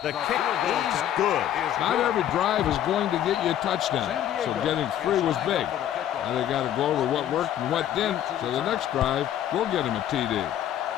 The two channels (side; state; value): right; quieter; 11.2 dB